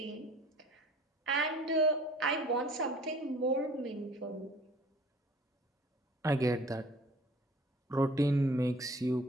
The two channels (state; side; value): normal; both; correlation 0.50